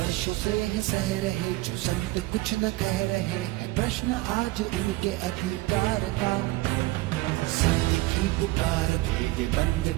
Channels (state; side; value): quieter; left; 19.7 dB